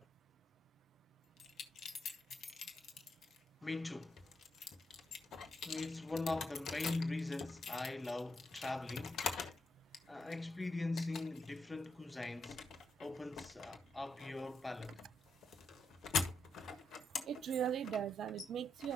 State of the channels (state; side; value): normal; both; correlation 0.80